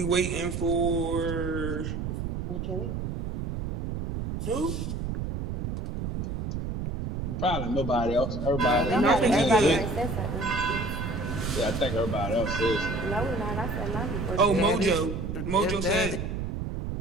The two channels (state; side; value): noise; right; rumble, 4 dB below the sound